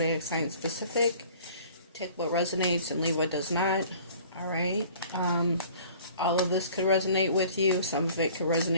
sign specific. Take what resonates and leave what does not. Alright, all of this could resonate with you, some of it could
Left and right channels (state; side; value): inverted; both; correlation -0.50